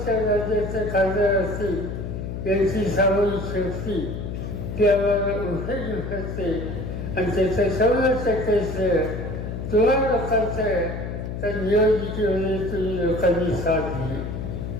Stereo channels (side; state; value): left; noise; hum, 6 dB below the sound